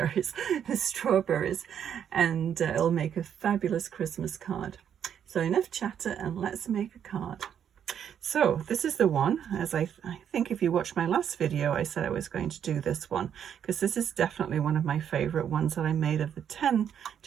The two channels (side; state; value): left; quieter; 8.8 dB